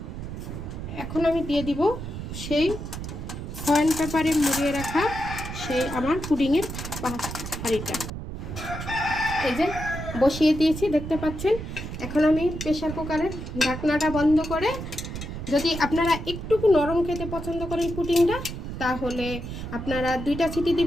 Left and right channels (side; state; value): right; noise; rumble, 7 dB below the sound